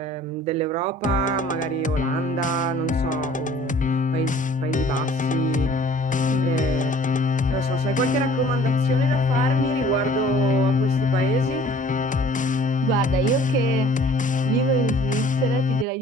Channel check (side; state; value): both; normal; correlation 0.51